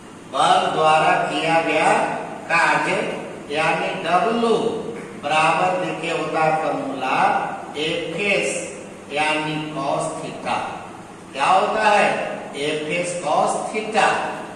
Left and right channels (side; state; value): both; identical; correlation 1.00